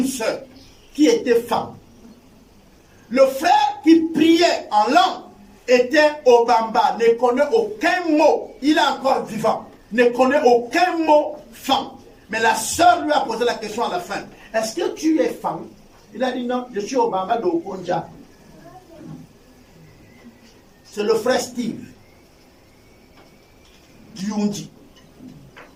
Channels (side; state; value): both; identical; correlation 1.00